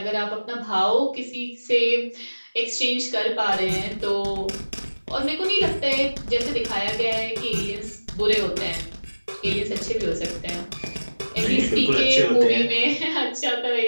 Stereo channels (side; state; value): both; inverted; correlation -1.00